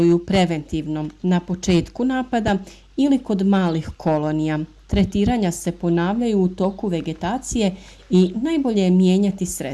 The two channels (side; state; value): both; identical; correlation 1.00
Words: preventivno na početku napada ili kod malih kolonija. Tretiranja se ponavljaju u toku vegetacije i najbolje je mijenjati